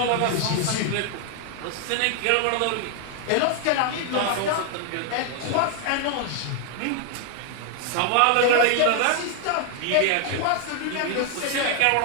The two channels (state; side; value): different; both; correlation 0.00